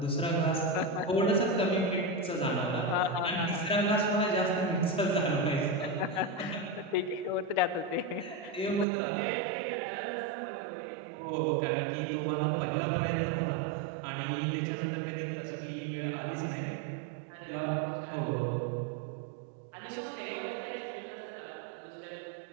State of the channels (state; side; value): drops out; left; at 8.8 s